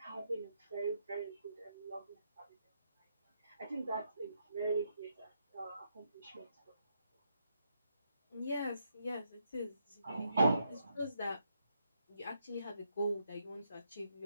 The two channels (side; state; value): both; inverted; correlation -0.79